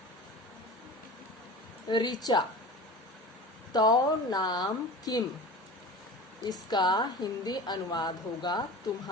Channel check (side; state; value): both; normal; correlation 0.34